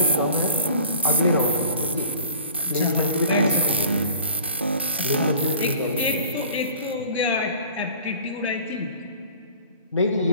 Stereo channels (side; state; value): both; inverted; correlation -0.46